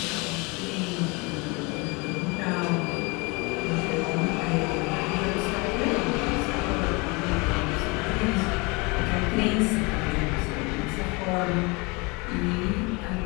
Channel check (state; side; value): quieter; right; 27.7 dB